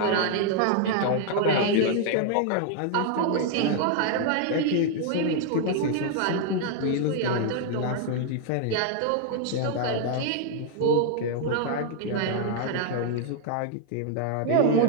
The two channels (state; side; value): different; both; correlation 0.00